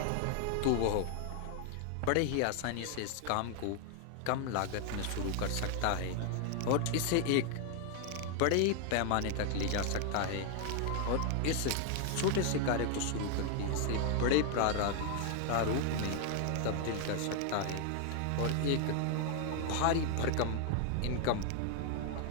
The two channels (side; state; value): both; different; correlation 0.00